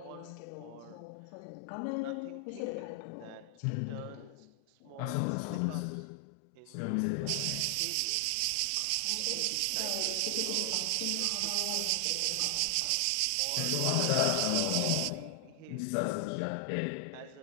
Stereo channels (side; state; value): both; different; correlation 0.00